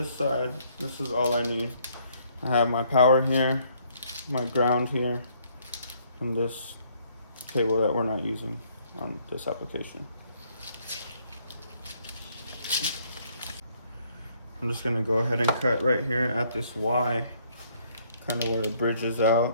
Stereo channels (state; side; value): inverted; both; correlation -0.66